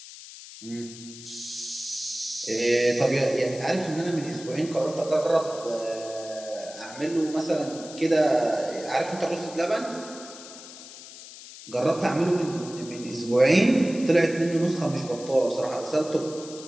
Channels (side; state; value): left; noise; hiss, 15 dB below the sound